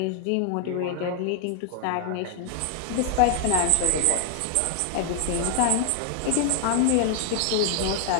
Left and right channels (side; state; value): both; different; correlation 0.00